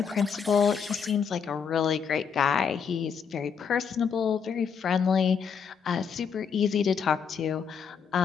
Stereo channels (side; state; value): right; quieter; 6.7 dB